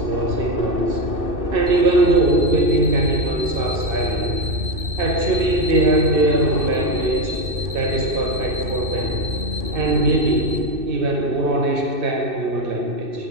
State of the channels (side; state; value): left; late; 2.6 ms